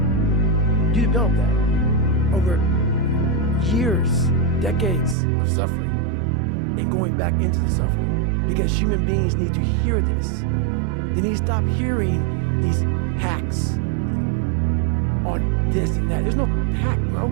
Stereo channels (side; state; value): left; drops out; at 5.2 s